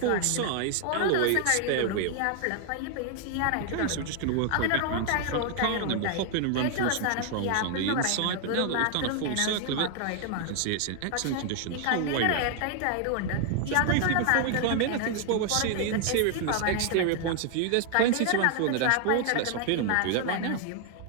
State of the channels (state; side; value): different; both; correlation 0.00